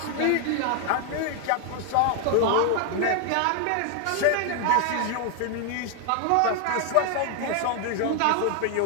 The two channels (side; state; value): both; different; correlation 0.00